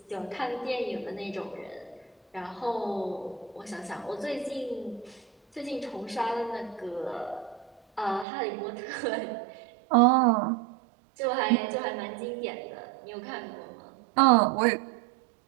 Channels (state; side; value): drops out; left; at 8.2 s